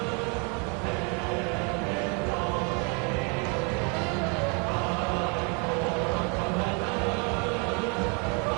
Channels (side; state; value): left; quieter; 34.6 dB